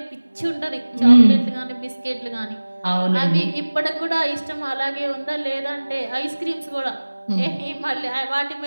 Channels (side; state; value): both; inverted; correlation -1.00